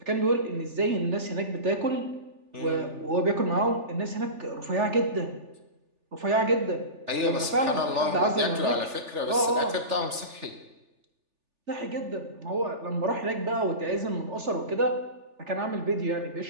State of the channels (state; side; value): late; left; 3.4 ms